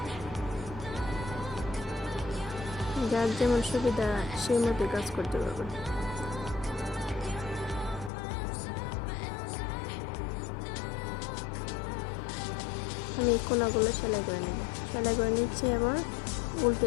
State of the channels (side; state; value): right; drops out; at 8.1 s